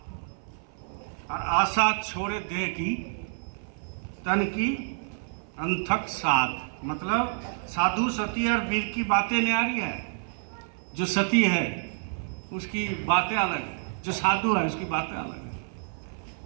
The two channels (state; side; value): silent; left; 56 dB below the other